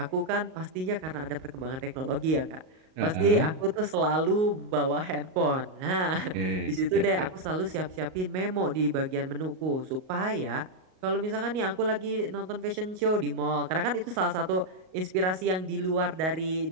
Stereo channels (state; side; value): late; left; 38 ms